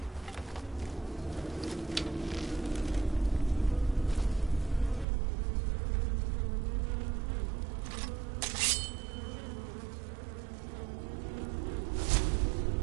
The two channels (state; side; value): drops out; left; at 5.1 s